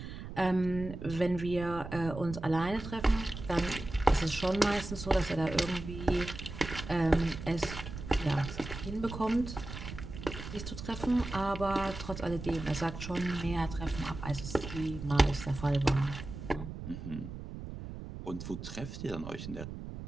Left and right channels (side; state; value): right; noise; rumble, 9 dB below the sound